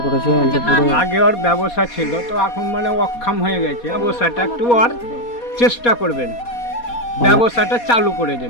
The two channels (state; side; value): late; right; 4.2 ms